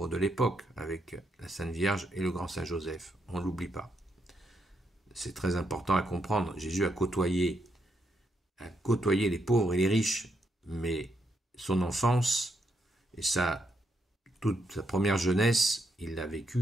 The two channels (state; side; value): normal; both; correlation 0.79